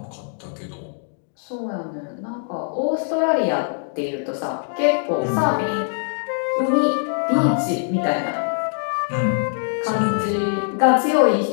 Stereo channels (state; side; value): silent; right; digital silence